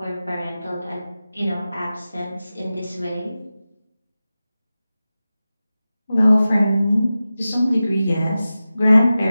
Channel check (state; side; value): inverted; both; correlation -0.94